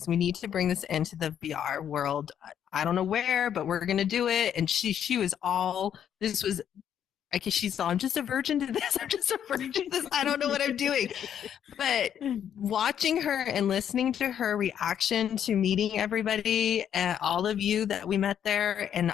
We need to bring this into the VR world. I don't know where, but we're going to do it. And she was all, this was, I guess she's all, I'm just a virgin to this. I'm just a virgin to this. I don't know what I'm doing. But watching her and listening to her reaction to meeting everybody, all of you that we met there and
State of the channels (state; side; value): quieter; right; 9.3 dB